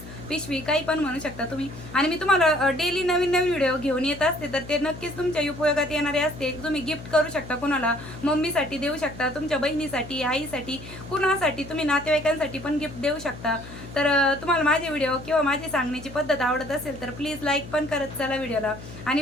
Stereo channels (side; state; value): left; noise; hum, 14 dB below the sound